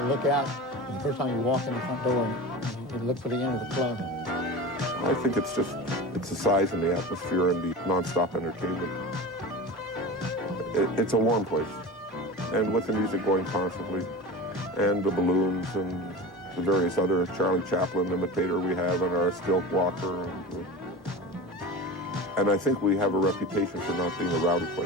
look out. And the first time you walk in the front door and you look for the end of the club. I think it's the size and the atmosphere and the non-stop entertainment. It's a warm place. And with the music going constantly, and the balloons and the various other Charlie Chaplin imitator we have and our stilt walker. And I think we have a reputation for not being a rowdy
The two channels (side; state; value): both; normal; correlation 0.31